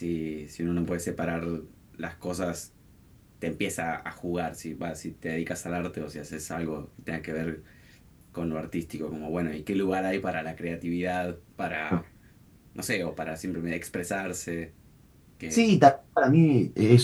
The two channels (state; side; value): identical; both; correlation 1.00